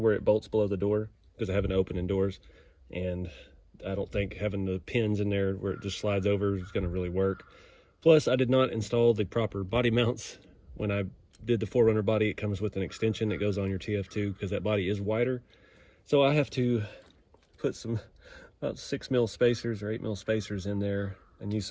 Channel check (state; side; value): identical; both; correlation 1.00